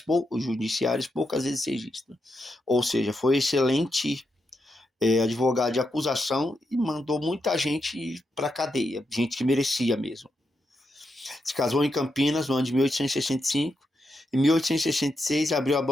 poucas vezes registram. Ou seja, foi excelente advogado de acusação e mandou muita gente para a cadeia, gente que merecia mesmo. Se casou em Campinas no ano de 1865. Em 1866, abriu a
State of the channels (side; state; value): both; normal; correlation 0.84